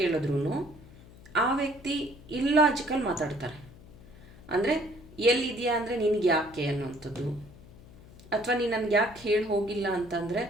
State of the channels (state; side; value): noise; left; hum, 20 dB below the sound